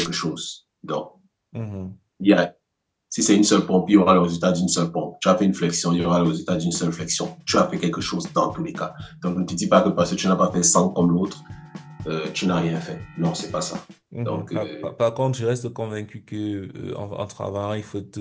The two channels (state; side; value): identical; both; correlation 1.00